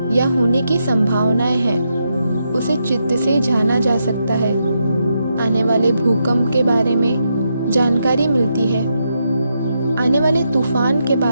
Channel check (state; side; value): inverted; both; correlation -0.82